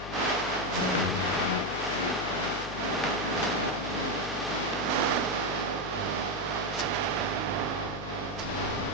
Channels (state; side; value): noise; left; hum, 12 dB below the sound